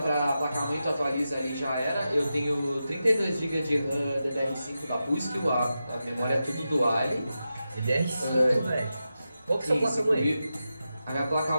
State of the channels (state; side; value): inverted; both; correlation -0.90